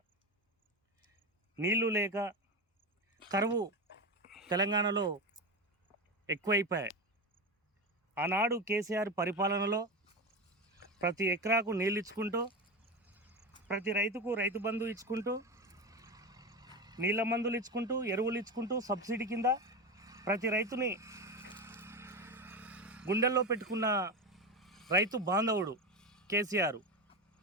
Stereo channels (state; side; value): normal; both; correlation 0.19